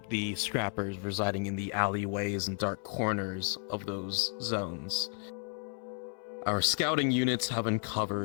the scrappers residing in the alleyways and dark corners of those zones, our scouting units have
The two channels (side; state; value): right; silent; 56 dB below the other